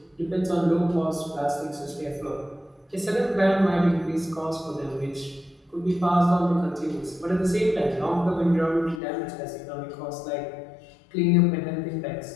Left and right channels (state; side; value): drops out; right; at 9.0 s